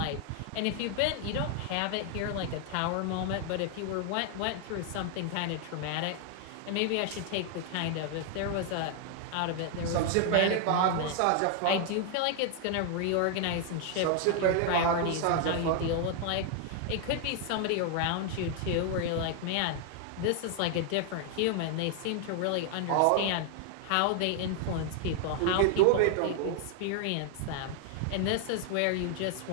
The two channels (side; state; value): both; different; correlation 0.00